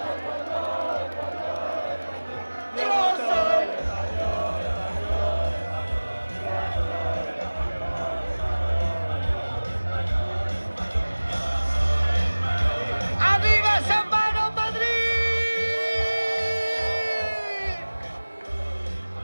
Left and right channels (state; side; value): inverted; both; correlation -1.00